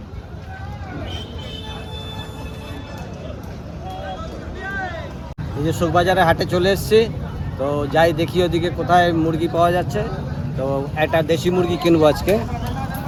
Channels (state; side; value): identical; both; correlation 1.00